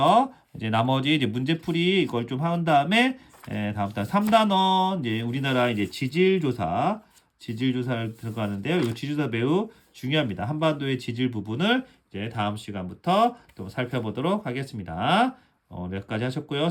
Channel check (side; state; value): both; identical; correlation 1.00